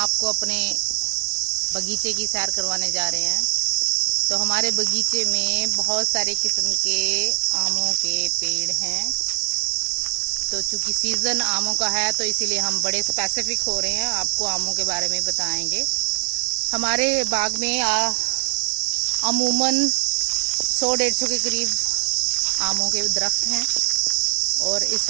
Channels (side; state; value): left; silent; digital silence